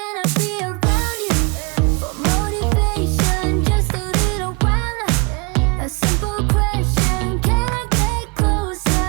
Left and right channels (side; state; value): left; quieter; 30.6 dB